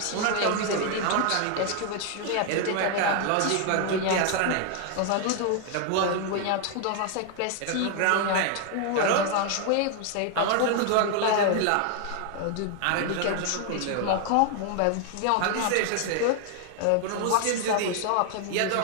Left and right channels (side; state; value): both; different; correlation 0.00